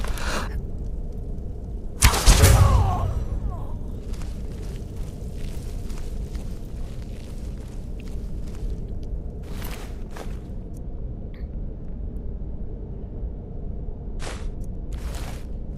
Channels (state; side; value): identical; both; correlation 1.00